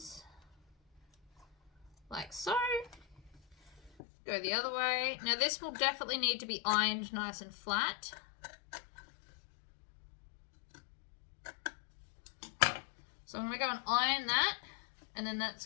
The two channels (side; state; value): right; drops out; at 3.9 s